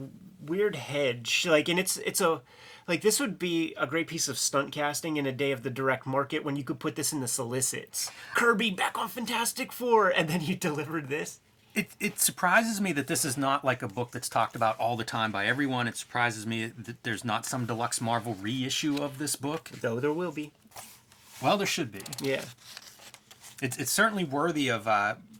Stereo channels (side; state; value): both; identical; correlation 1.00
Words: weird hedge. Like, and it's a... Like, this would be a great piece of stunt casting in a day of the direct market when you could put this in the solicits. Kirby back on Fantastic Four, and then you delivered this. It surprises me that this is not like a book that's talked about all the time by everyone. It surprises me that there's not some deluxe Marvel reissue of this book. Though there will be. Well, there should be. Yeah. It's certainly worthy of